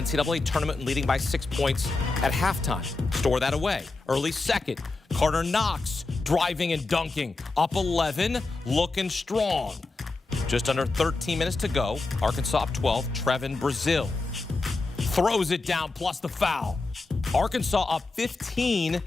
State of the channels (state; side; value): quieter; right; 3.5 dB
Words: tournament, leading by 6 points at halftime. Store that away. Early second. Carter Knox driving and dunking. Up 11, looking strong. Just under 13 minutes to go. Arkansas up 12. Trevin Brazil throws it down, plus the foul. Arkansas up 15